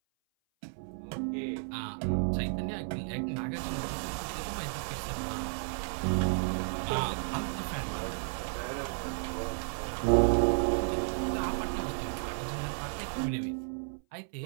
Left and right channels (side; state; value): left; silent; 56 dB below the other